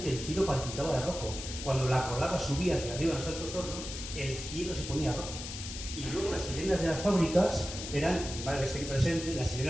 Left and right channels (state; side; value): noise; left; hiss, 8 dB below the sound